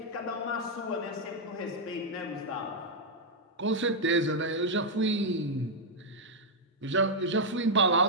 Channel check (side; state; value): both; normal; correlation -0.03